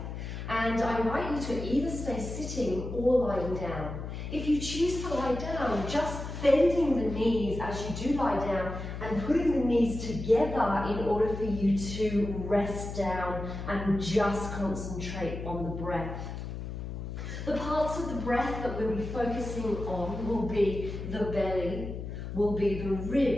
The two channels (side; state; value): left; noise; hum, 7 dB below the sound